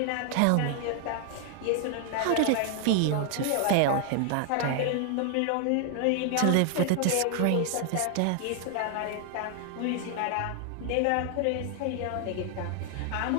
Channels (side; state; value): both; different; correlation 0.00